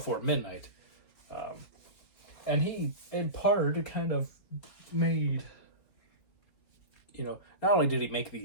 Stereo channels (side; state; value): right; late; 4.6 ms